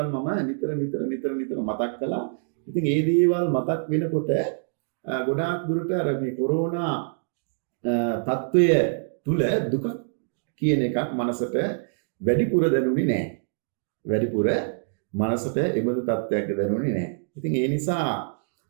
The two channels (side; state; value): left; silent; digital silence